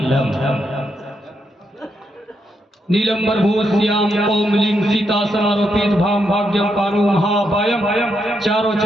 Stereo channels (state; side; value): normal; both; correlation 0.80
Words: नीलंबर भूश्याम ओमलिंग सीता समारोपित भाम भाग्यम पानु महाभायम चारों